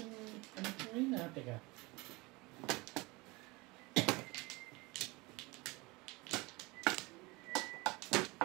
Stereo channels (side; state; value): left; quieter; 24.2 dB